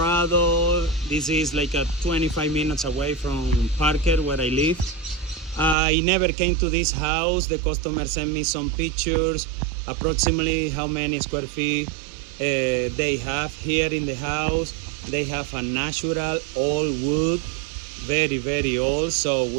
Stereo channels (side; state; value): left; drops out; at 5.8 s